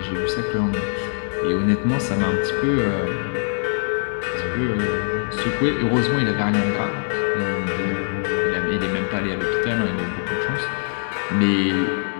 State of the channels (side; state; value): right; silent; digital silence